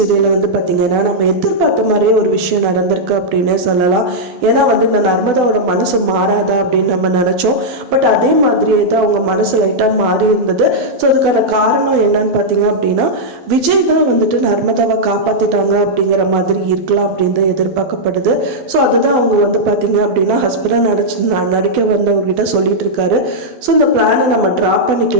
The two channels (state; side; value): late; left; 12 ms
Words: வந்து பார்த்திங்கன்னா நம்ம எதிர்பார்த்த மாதிரியே ஒரு விஷயம் நடந்திருக்கு அப்படின்னே சொல்லலாம். ஏன்னா வந்து இந்த நர்மதாவோட மனசு மாறாதா அப்படின்னு நம்ம நினச்சோம். பட் அதே மாதிரியே தான் அவங்க மனசு லைட்டாக மாறி இருந்தது. ஸோ அதுக்கான காரணம் என்னன்னு பார்த்தீங்க அப்படின்னா, விஜய் தான் வந்துட்டு நர்மதாவை காப்பாற்றிட்டாங்க அப்படிங்கிற மாதிரி இருக்கலாம் அப்படின்னு தான் எதிர்பார்க்கப்படுது. ஸோ அதுதான் அவங்க வந்து பார்த்திங்க அப்படின்னா ஹஸ்பண்டாக நடிக்க வந்தவங்ககிட்ட சொல்லிட்டு இருக்காரு. ஸோ இந்த பிளானை நம்ம ட்ராப்